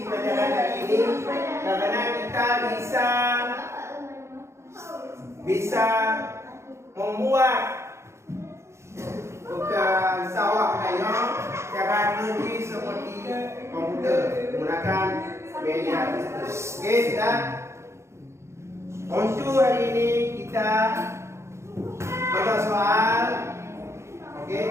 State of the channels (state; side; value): late; left; 0.13 ms